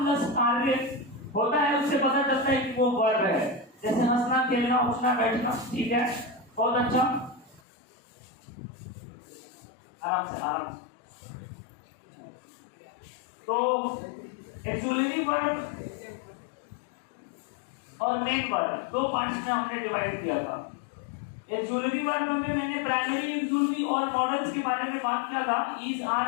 प्लस कार्य होता है, उससे पता चलता है कि वो वर्ब है। जैसे हंसना, खेलना, उठना, बैठना, ठीक है, बहुत अच्छा, आराम से आराम से। तो एक्सुलरी वर्ब और मेन वर्ब दो पार्ट्स में हमने डिवाइड किया था। एक्सुलरी वर्ब में मैंने प्राइमरी, एक्सुलरी और मॉडल्स के बारे में बात किया था। Is,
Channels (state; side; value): drops out; right; at 7.6 s